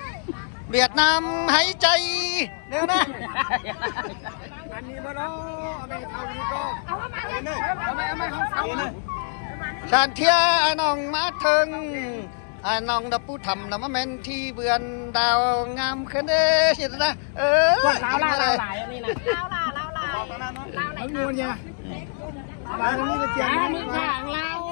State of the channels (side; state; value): right; silent; digital silence